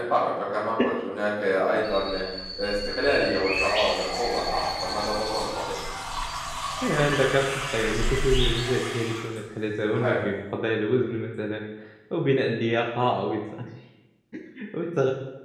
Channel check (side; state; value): both; identical; correlation 1.00